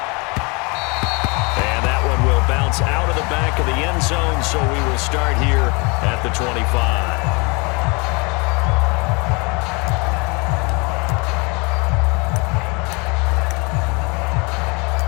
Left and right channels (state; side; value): quieter; right; 29.7 dB